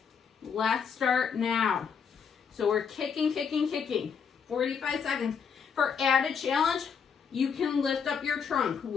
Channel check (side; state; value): right; quieter; 6.6 dB